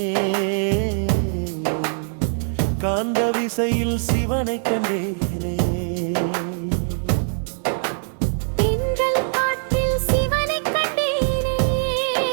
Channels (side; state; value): left; silent; 63 dB below the other